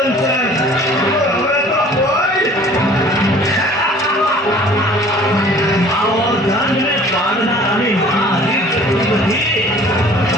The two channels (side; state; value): both; normal; correlation 0.50